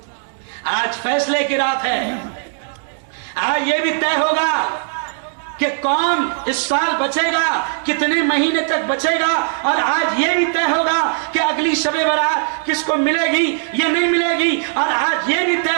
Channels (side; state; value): left; silent; 67 dB below the other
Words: आज फैसले की रात है। आज ये भी तय होगा कि कौन इस साल बचेगा, कितने महीने तक बचेगा। और आज ये भी तय होगा कि अगली शबे बारात किसको मिलेगी या नहीं मिलेगी। और आज ये भी तय